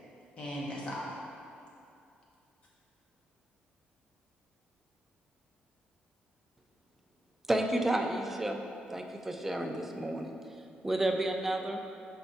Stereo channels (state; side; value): normal; both; correlation 0.87